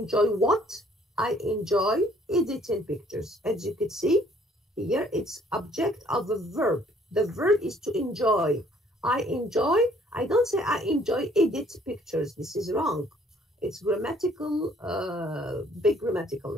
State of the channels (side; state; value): both; normal; correlation 0.61